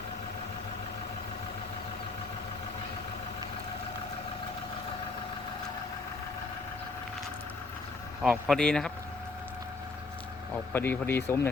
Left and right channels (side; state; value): right; quieter; 3.7 dB